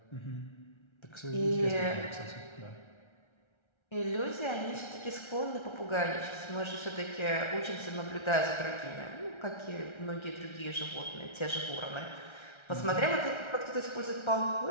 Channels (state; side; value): late; right; 1.3 ms